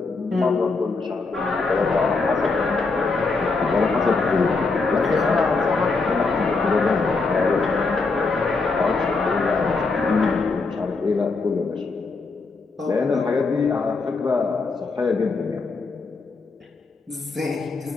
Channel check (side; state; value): right; quieter; 4.0 dB